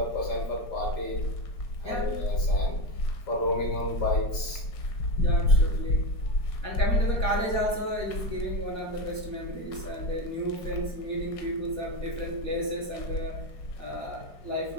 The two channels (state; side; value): late; right; 5.0 ms